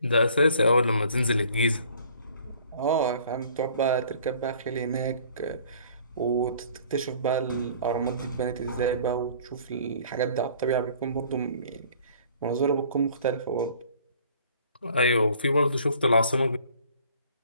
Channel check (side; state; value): both; inverted; correlation -0.54